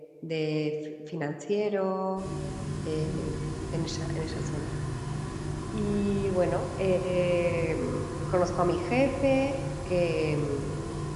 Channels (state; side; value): identical; both; correlation 1.00